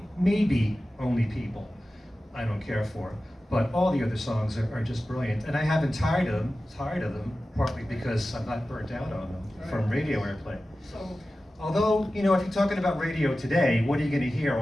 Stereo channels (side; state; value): both; normal; correlation 0.95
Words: Only People, I don't care for. But all the other songs are just brilliant, and I haven't tired of them, partly because I'm not burnt out on them from radio airplay. So, Although, you know, if you're talking about radio today, what are you going to hear